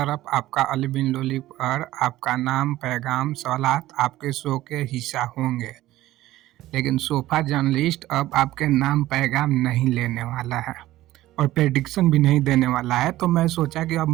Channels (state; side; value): quieter; left; 15.6 dB